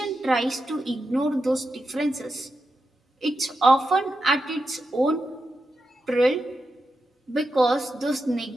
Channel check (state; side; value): normal; both; correlation 0.88